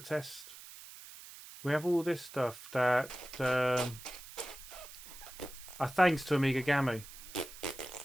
We have all this stuff that are thanks to Amiga Gamu.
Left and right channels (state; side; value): noise; right; hiss, 15 dB below the sound